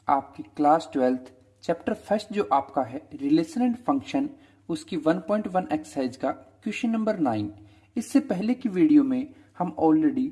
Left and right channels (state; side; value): identical; both; correlation 1.00